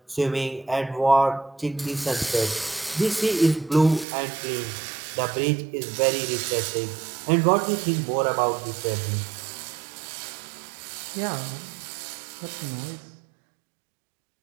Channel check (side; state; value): left; drops out; at 4.0 s